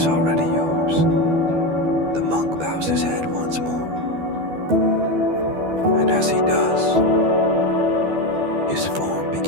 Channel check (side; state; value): left; late; 12 ms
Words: already yours. The monk bows his head once more, and as he does, his form